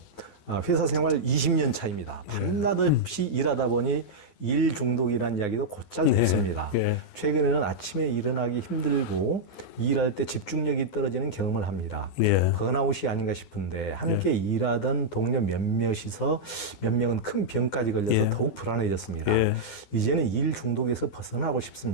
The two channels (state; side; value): late; right; 12 ms